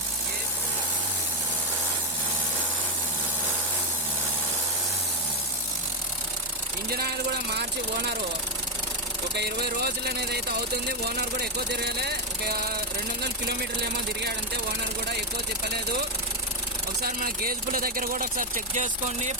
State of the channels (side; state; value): both; normal; correlation 0.04